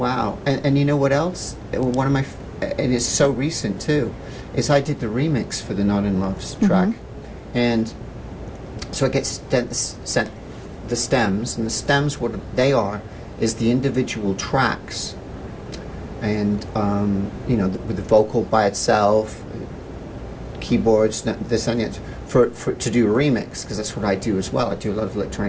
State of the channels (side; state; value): both; identical; correlation 1.00